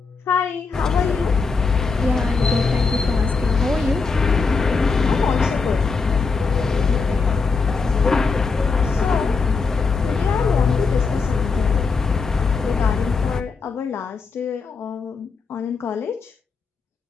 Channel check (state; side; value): quieter; right; 4.7 dB